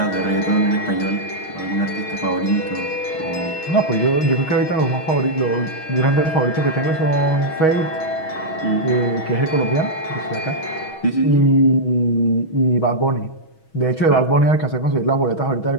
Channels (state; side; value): late; right; 6.3 ms